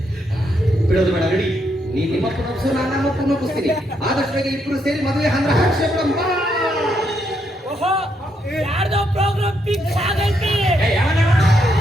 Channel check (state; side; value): normal; both; correlation 0.77